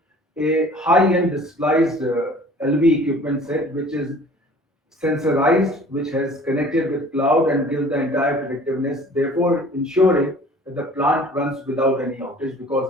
a high-end disguised LV equipment set which is sensorized, which has connected with cloud and gives the entire predictiveness, therefore ensuring that the plant runs without any outage because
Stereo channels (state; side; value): normal; both; correlation 0.49